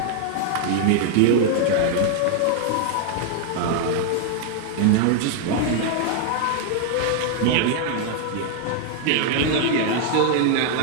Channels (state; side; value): different; both; correlation 0.00